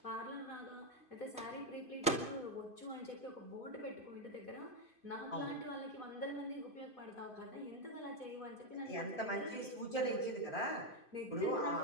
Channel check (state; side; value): late; right; 2.5 ms